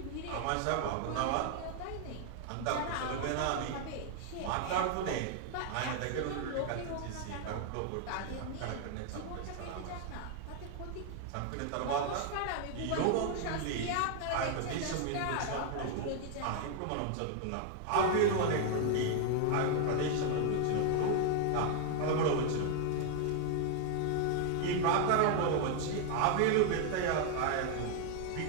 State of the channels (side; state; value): both; different; correlation 0.00